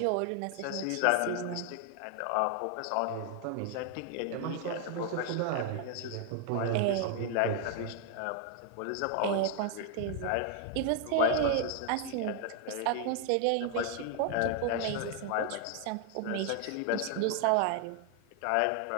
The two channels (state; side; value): different; both; correlation 0.00